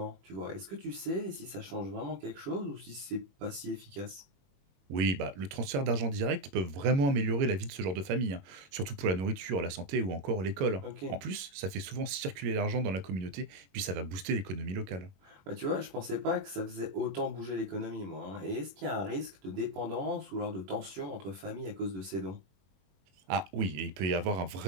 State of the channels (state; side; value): late; left; 21 ms